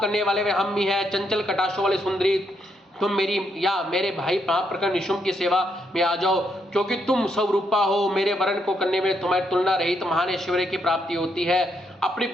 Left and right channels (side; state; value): both; normal; correlation 0.77